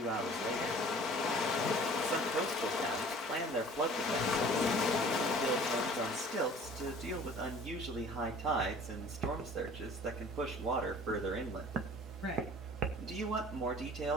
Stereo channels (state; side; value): normal; both; correlation 0.48